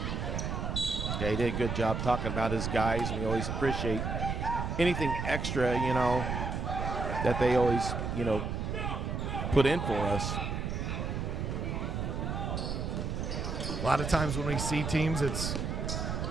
Yeah, he did a good job talking about his guys. We always appreciate anything extra, you know, that they always, you know, put in for us. A lot of times when we see teams, it's,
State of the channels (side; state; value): right; noise; rumble, 2 dB below the sound